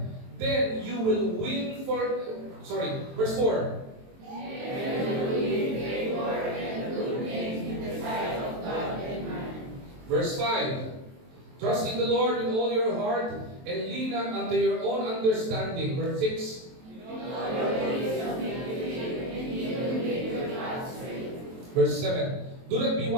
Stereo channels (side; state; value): left; late; 23 ms